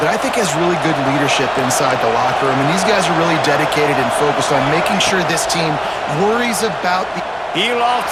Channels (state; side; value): identical; both; correlation 1.00